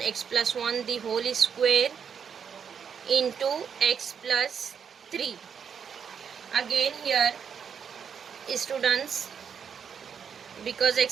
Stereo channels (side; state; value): left; quieter; 7.2 dB